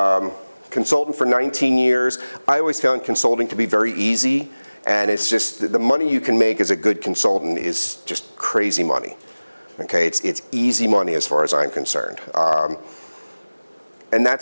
consultant for 19 years, I always found consulting to be very easy, and it's just, the money you can make as a good consultant is just crazy money. Okay, it's easy money as far as I'm concerned. And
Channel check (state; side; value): inverted; both; correlation -1.00